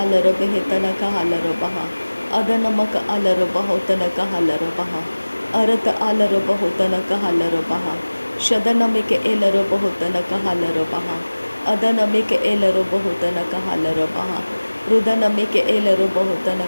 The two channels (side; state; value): both; inverted; correlation -1.00